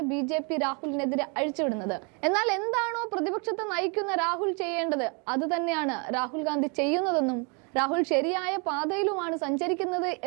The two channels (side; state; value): left; quieter; 34.5 dB